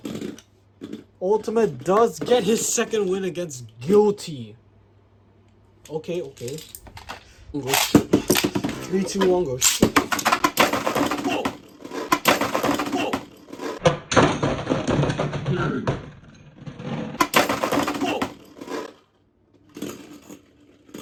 Ultimate does get his second win against Guilty. Okay. Go. 3, 2, 1, go. Whoa! Whoa! Whoa!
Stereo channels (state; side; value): identical; both; correlation 1.00